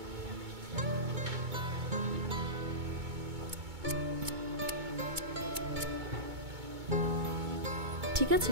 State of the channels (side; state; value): left; late; 2.2 ms